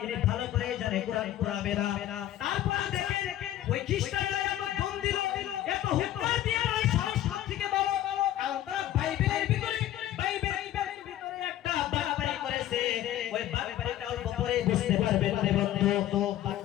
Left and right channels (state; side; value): quieter; right; 13.0 dB